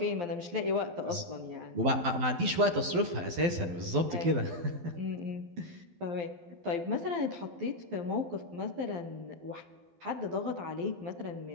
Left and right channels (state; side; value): late; left; 12 ms